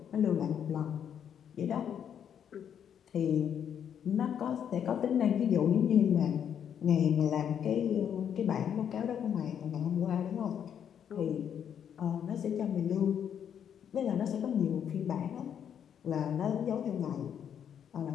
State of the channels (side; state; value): right; quieter; 8.6 dB